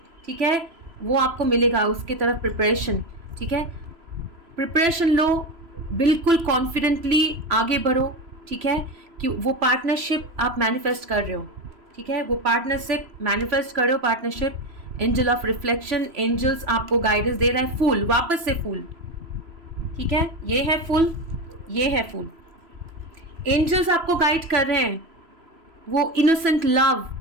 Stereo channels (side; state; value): left; late; 3.0 ms